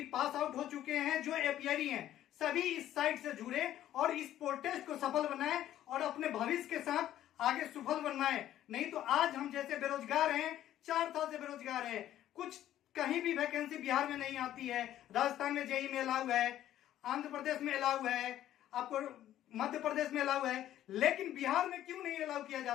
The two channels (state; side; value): quieter; right; 12.4 dB